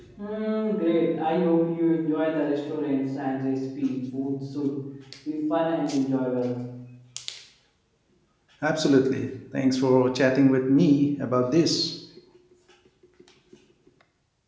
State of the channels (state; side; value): identical; both; correlation 1.00